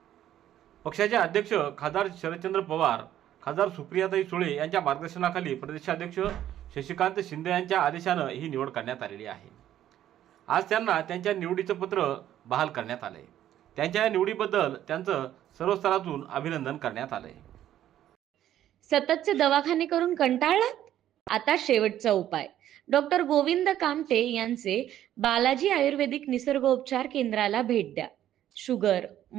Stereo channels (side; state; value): left; quieter; 11.9 dB